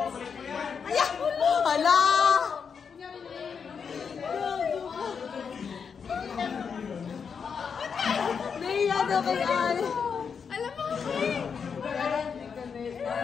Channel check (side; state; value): right; quieter; 6.3 dB